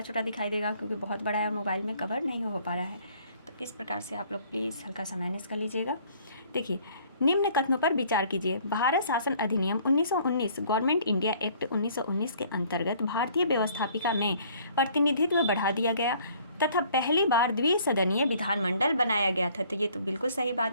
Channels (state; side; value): inverted; both; correlation -0.58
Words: छोटा दिखाई देगा क्योंकि बहुत बड़ा है, मोबाइल में कवर नहीं हो पा रहा है। तो इस प्रकार से आप लोग प्लीज़ हल्का सा मैनेज कर लीजिएगा। देखिए, निम्न कथनों पर विचार कीजिए। भारत शासन अधिनियम 1919 गवर्नमेंट इंडिया एक्ट 1919 के अंतर्गत भारतीय व्यवस्थापिका में प्रतिनिधित्व बढ़ा दिया गया तथा पहली बार द्विसदनीय विधानमंडल बनाया गया था। तो ये तो बिल्कुल सही